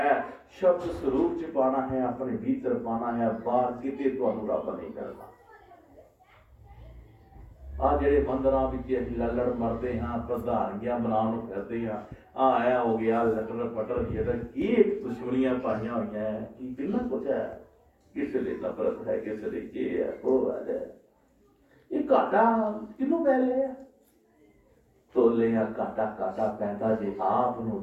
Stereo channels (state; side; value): identical; both; correlation 1.00